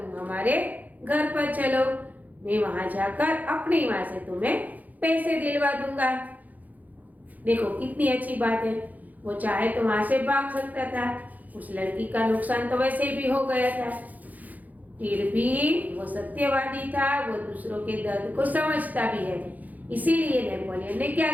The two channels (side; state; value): left; late; 0.080 ms